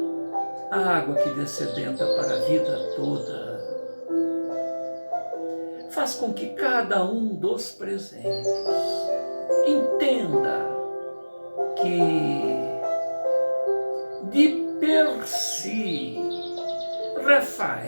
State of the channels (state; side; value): inverted; both; correlation -1.00